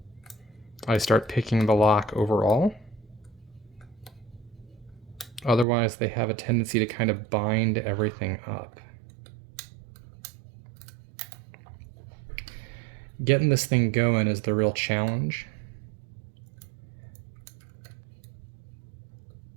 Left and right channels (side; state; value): left; drops out; at 5.7 s